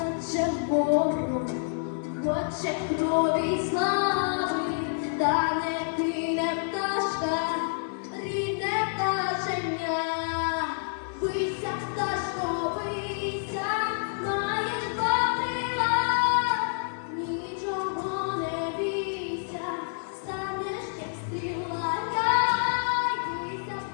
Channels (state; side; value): silent; right; 56 dB below the other